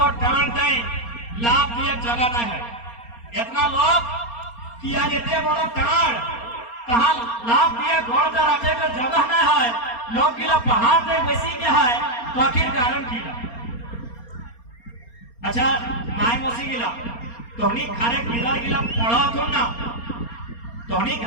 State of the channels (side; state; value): right; late; 4.3 ms